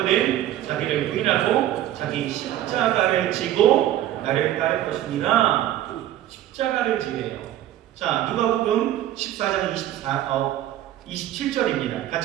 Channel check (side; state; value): left; quieter; 12.9 dB